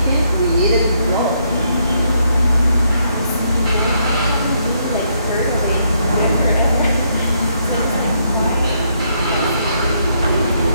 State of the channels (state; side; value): inverted; both; correlation -0.74